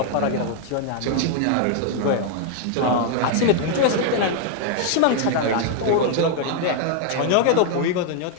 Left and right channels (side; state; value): both; different; correlation 0.00